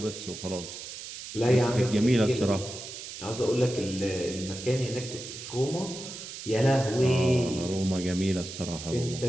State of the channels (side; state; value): right; noise; hiss, 10 dB below the sound